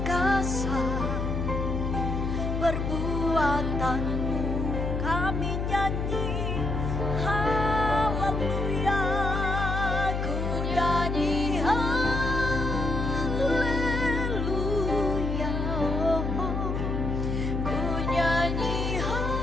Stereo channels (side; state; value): left; noise; hum, 1 dB below the sound